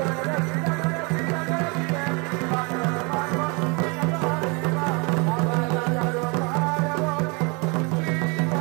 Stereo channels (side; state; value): left; quieter; 30.7 dB